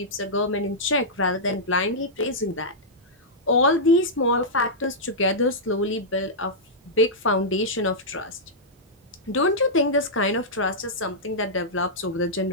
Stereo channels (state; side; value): normal; both; correlation -0.11